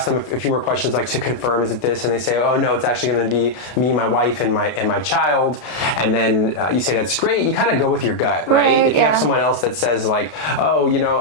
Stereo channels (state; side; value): late; right; 32 ms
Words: them a few more questions like to confirm, is it this? And they say, oh no, it's actually going to be me, my wife, and my child. And then you say that's great. You kind of go with your gut, right? If you have someone else that says like,